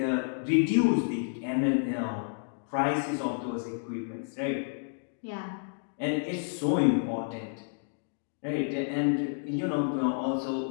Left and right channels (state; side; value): silent; right; digital silence